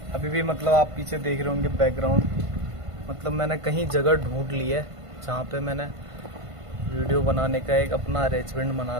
अभी भी मतलब आप पीछे देख रहे होंगे बैकग्राउंड, मतलब मैंने कहीं जगह ढूंढ ली है जहाँ पे मैंने वीडियो बनाने का एक अपना अरेंजमेंट बना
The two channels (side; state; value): left; late; 1.5 ms